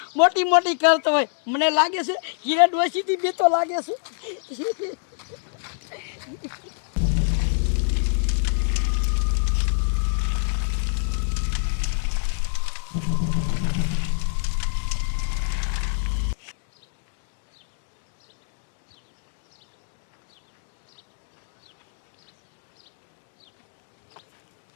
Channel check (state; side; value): silent; right; digital silence